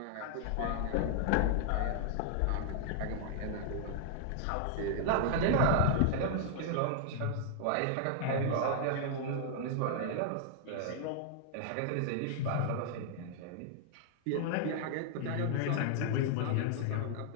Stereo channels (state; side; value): different; both; correlation -0.01